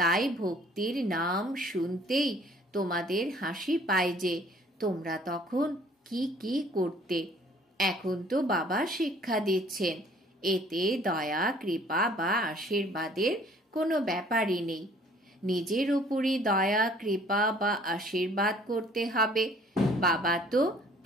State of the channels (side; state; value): both; normal; correlation 0.56